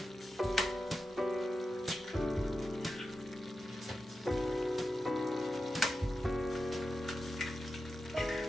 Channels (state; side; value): normal; both; correlation 0.91